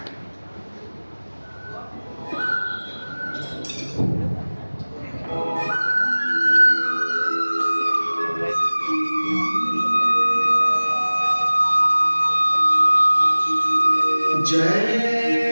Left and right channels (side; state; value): both; inverted; correlation -1.00